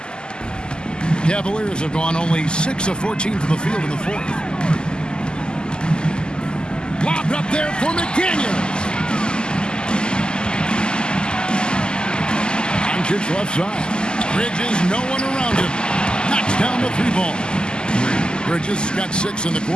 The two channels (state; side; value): late; right; 0.047 ms